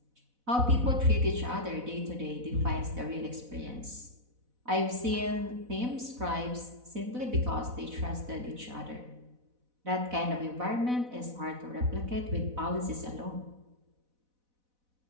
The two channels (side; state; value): left; late; 4.0 ms